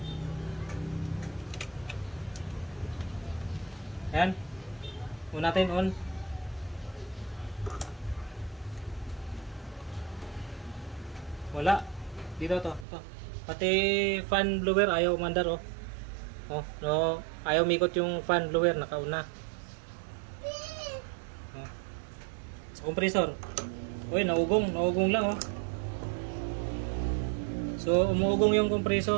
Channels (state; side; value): drops out; left; at 12.9 s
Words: Ayan. Una natin on. Wala. Dito to. Pati fan blower ayaw umandar oh. Oh, no. Ayaw mikot yung fan blower nakauna. Oh. Sa compressor. Uy, naugong lang oh. So, umuugong yung